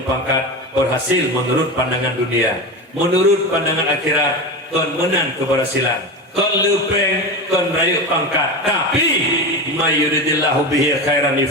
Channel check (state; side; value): normal; both; correlation 0.23